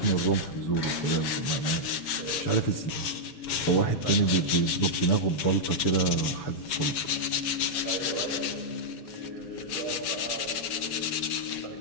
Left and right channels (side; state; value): right; late; 7.4 ms